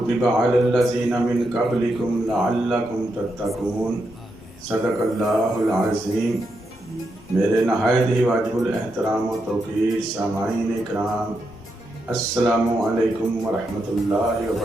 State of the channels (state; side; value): normal; both; correlation 0.83